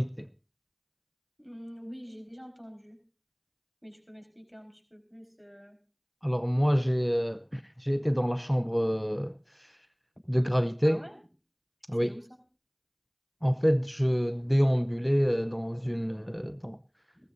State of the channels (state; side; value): identical; both; correlation 1.00